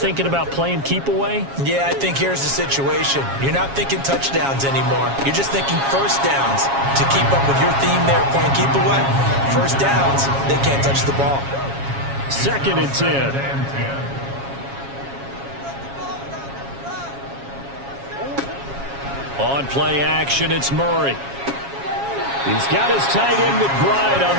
about playing keep away? Yeah, I think here's the situation. You're not thinking touchdowns anymore. You're just thinking first downs. To keep up with your theme there, playing keep away, first downs, they can't touch the ball. 2nd and 10. On play action, it's Murray. He's got his tight end McBride on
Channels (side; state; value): left; late; 7.3 ms